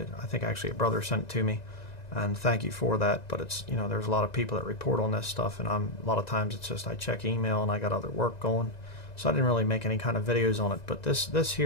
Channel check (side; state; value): right; late; 1.9 ms